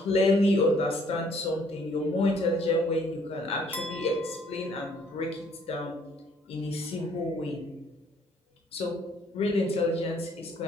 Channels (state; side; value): normal; both; correlation 0.63